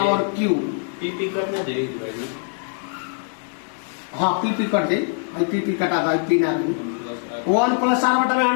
Q। PP करना चाहिए। हाँ PP कट दे, PP कटा था, P ना 1 प्लस R बटा में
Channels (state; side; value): silent; right; 57 dB below the other